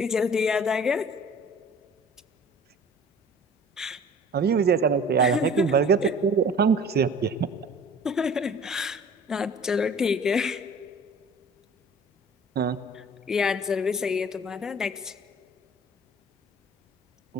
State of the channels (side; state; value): both; normal; correlation 0.46